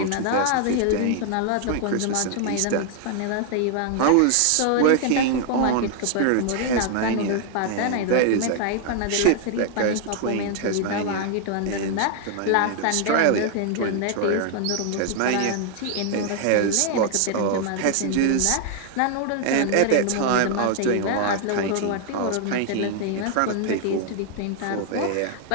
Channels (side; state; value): both; different; correlation 0.00